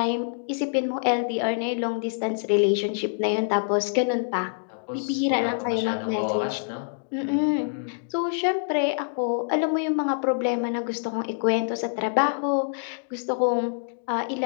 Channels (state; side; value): silent; right; digital silence